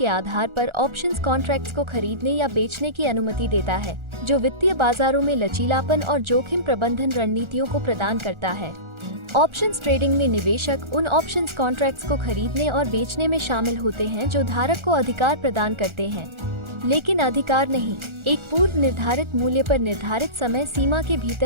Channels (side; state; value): left; late; 1.4 ms